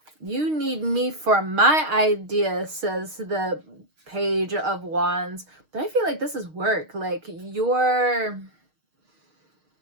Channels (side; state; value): left; late; 6.5 ms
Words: You need me for my idea, says the Page of Wands. But I feel like this is work. Like you're...